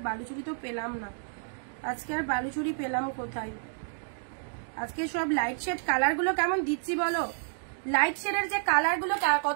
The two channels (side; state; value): left; silent; digital silence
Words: বালুচুরি তো পেলাম না, আজকে আর বালুচুরি পেলাম কোথায়? আজকে সব লাইট শেড কালার গুলো কেমন দিচ্ছি বলো, লাইট শেডের যে কালার গুলো